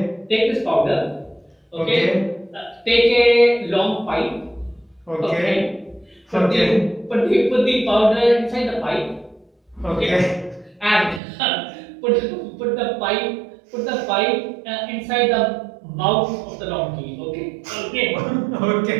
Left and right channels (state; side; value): drops out; left; at 11.2 s